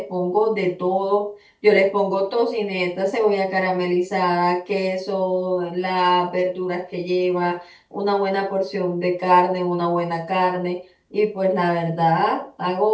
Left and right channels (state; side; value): identical; both; correlation 1.00